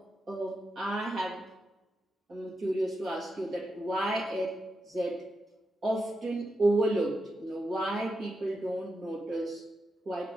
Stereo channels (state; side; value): normal; both; correlation 0.87